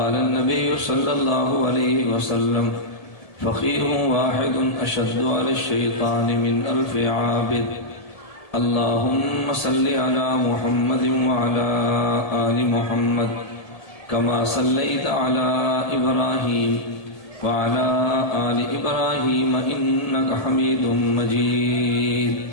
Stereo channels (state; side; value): late; right; 1.8 ms